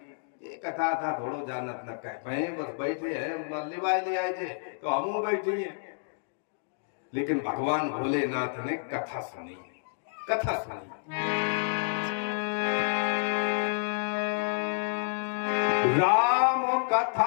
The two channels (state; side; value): silent; right; digital silence